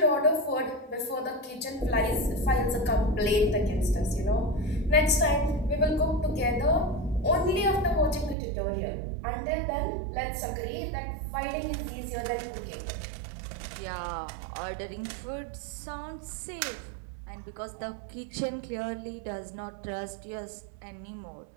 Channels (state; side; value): drops out; left; at 8.3 s